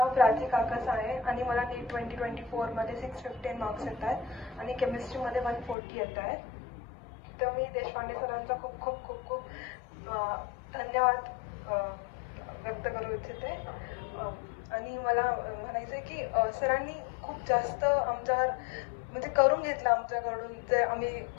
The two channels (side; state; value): right; drops out; at 5.8 s